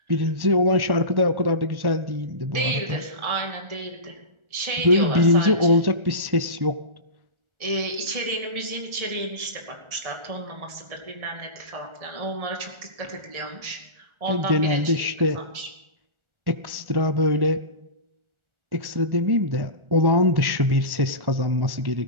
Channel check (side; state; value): left; late; 1.4 ms